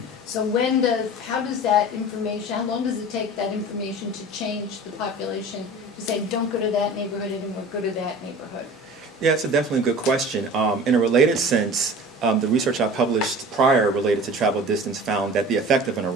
So how does that information, how long does it take that information to change the population to say, don't go to that neighborhood anymore, go to that neighborhood? Yeah, it's definitely a good question. In a related sense, the research I published prior related to travel distance found that the effect of an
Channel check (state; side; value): normal; both; correlation 0.40